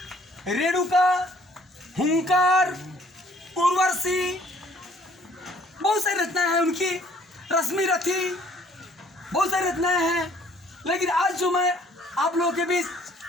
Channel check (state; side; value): normal; both; correlation 0.59